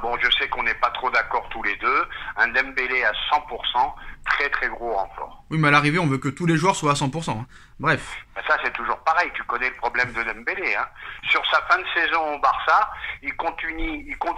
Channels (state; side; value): identical; both; correlation 1.00